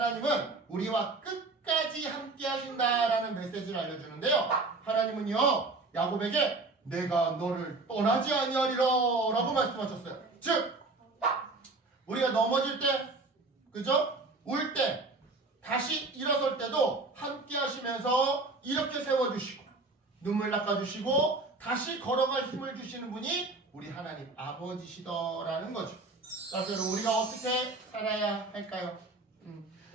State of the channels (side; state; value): left; quieter; 3.4 dB